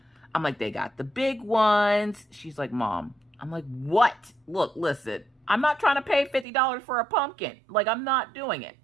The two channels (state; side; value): drops out; left; at 6.5 s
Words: I'm like, they got the big ones. She's like, Mom. I'm like, what? Look, listen. I'm not trying to pay $50 for a pumpkin. Like, I'm not doing it.